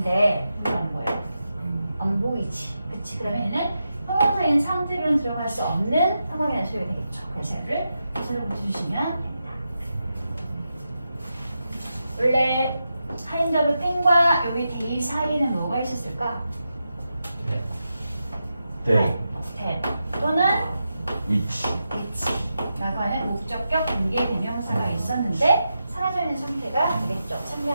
이거 안 보여. 안 보이지. 그치? 그러면 얘는 형용사인 상태로는 들어갈 수 없는 상황이라는 소리가 되겠죠. 그래서 얘를 서술어 붙여주시면 됩니다. 원래 하인더브 땡과 여기 데이 사이에는 뭐가 있었을까? 네. 대 또는 위치. 라고 하는 목적격 관계 대명사가 있었는데 사라져 있는 상태가 되겠죠. 참여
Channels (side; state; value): both; inverted; correlation -0.88